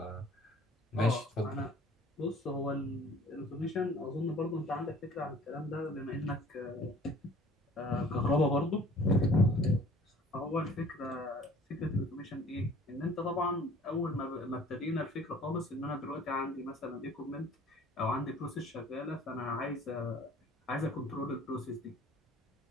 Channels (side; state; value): both; normal; correlation 0.51